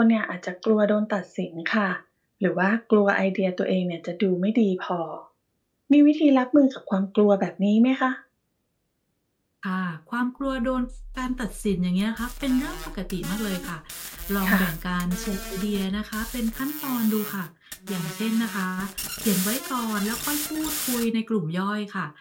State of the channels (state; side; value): identical; both; correlation 1.00